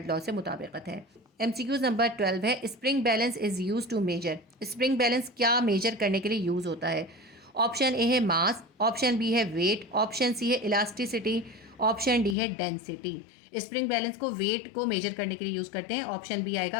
लॉ से मुताबिकत है। MCQ नंबर 12 है spring balance is use to measure. Spring balance क्या मेजर करने के लिए यूज़ होता है? ऑप्शन ए है मास, ऑप्शन बी है वेट, ऑप्शन सी है इलास्टिसिटी, ऑप्शन डी है डेंसिटी। स्प्रिंग बैलेंस को वेट को मेजर करने के लिए यूज़ करते हैं। ऑप्शन बी आएगा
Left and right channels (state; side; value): drops out; right; at 12.4 s